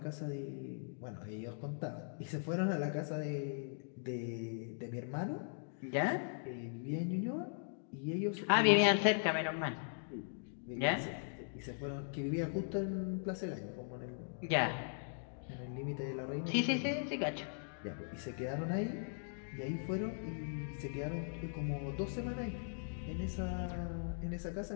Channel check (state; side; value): silent; right; digital silence